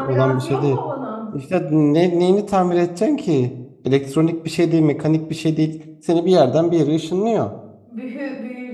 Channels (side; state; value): both; identical; correlation 1.00